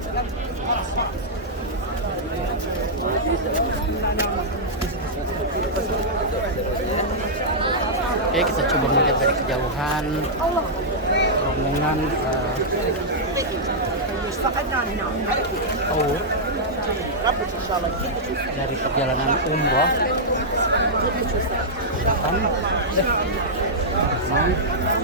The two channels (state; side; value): normal; both; correlation -0.09